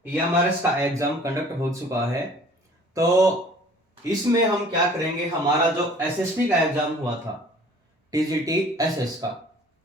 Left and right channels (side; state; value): both; normal; correlation 0.51